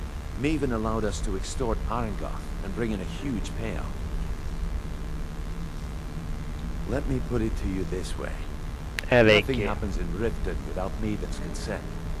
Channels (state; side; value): identical; both; correlation 1.00